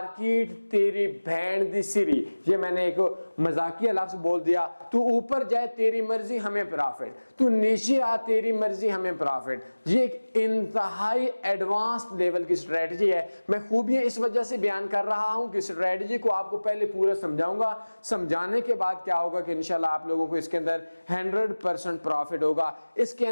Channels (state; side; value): inverted; both; correlation -1.00